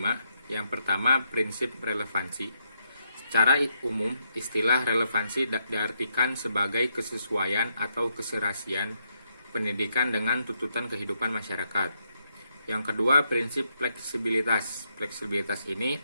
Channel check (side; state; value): both; inverted; correlation -0.77